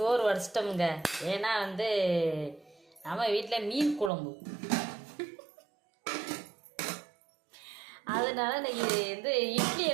வடிச்சிட்டோமுங்க. ஏன்னா நம்ம வீட்டில் மீன் குழம்பு, அதனால இன்னைக்கு இட்லி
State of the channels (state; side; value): drops out; left; at 4.1 s